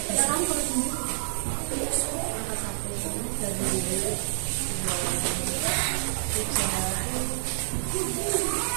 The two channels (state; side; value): silent; left; digital silence